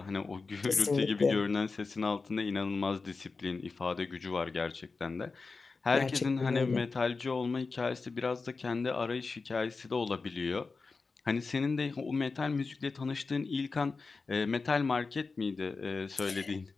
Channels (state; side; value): quieter; right; 4.2 dB